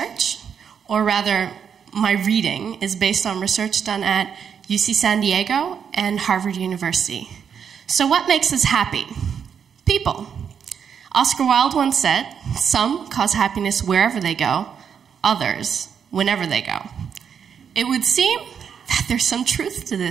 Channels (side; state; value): left; quieter; 7.4 dB